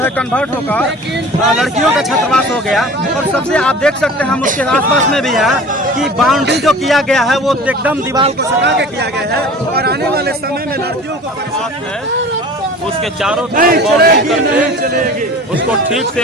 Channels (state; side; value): normal; both; correlation 0.41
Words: कन्वर्ट होकर लड़कियों का छात्रावास हो गया। और सबसे आप देख सकते हैं हम उसके आसपास में भी है कि बाउंड्री जो किया गया है वो एकदम दीवार को सटा के किया गया है और आने वाले समय में लड़कियों को परेशानी है। उसके चारों तरफ बाउंड्री करके उसको ठीक